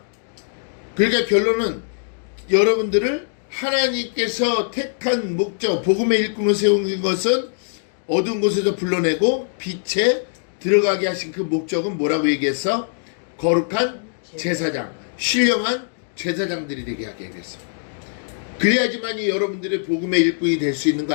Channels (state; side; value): silent; right; digital silence